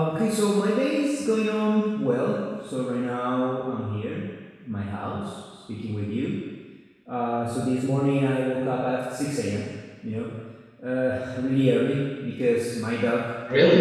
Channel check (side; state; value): both; identical; correlation 1.00